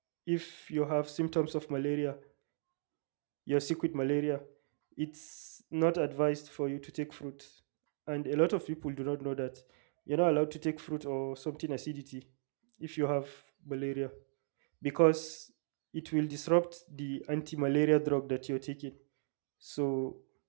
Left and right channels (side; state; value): left; silent; digital silence